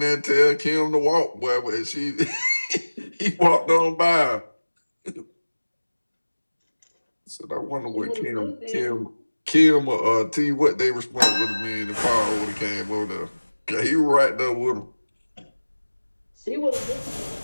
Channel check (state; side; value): inverted; both; correlation -1.00